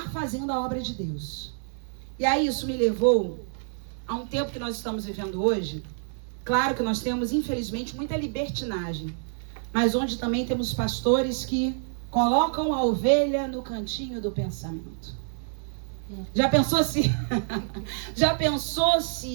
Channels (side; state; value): left; silent; 60 dB below the other